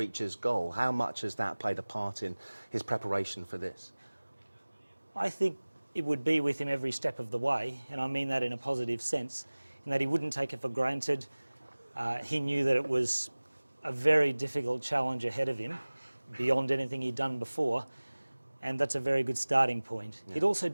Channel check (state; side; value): inverted; both; correlation -1.00